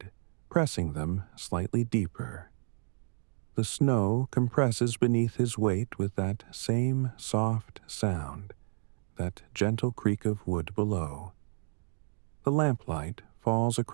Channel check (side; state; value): left; silent; digital silence